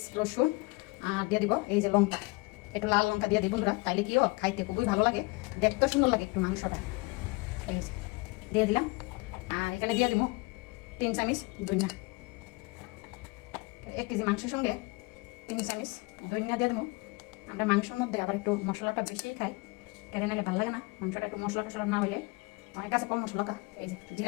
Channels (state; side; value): quieter; right; 26.5 dB